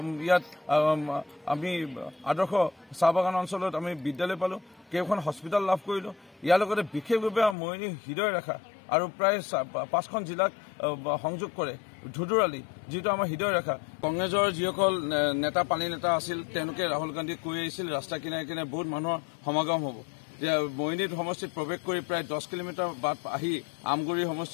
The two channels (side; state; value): right; drops out; at 7.6 s